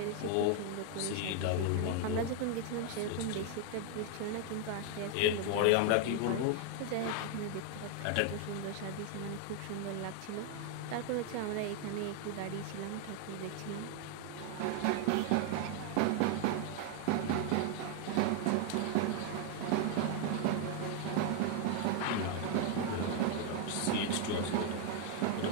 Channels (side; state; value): both; different; correlation 0.00